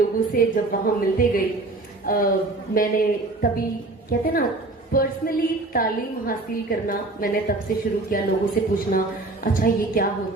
से जब वहां मिलते गई, मैंने तभी कहते ना पर्सनली तालीम हासिल करना मैंने तब से शुरू किया, लोगों से पूछना अच्छा ये क्या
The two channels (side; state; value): left; quieter; 3.0 dB